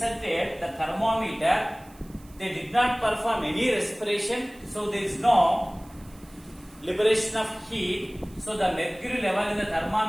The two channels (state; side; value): noise; right; hiss, 26 dB below the sound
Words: the thermometer, they did not perform any respiration, so there is no liberation of heat, so the mercury level in the